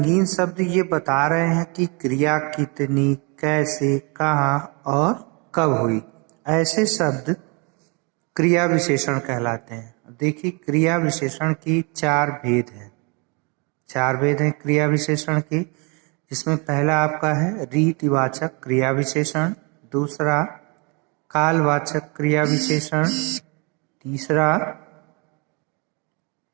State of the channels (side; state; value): left; quieter; 31.4 dB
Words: शब्द ये बता रहे हैं कि क्रिया कितनी, कैसे, कहाँ और कब हुई। ऐसे शब्द क्रिया विशेषण कहलाते हैं। देखिए, क्रिया विशेषण की 4 भेद हैं। 4 भेद हैं क्रिया विशेषण के, जिसमें पहला आपका है रीतिवाचक क्रिया विशेषण, दूसरा कालवाचक क्रिया विशेषण, तीसरा